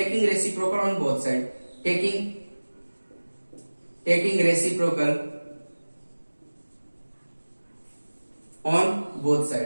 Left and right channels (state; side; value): inverted; both; correlation -1.00